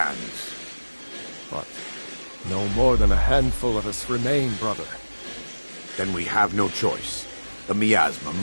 But no more than a handful of us remain, brother. Then we have no choice. The miasma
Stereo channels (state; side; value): inverted; both; correlation -1.00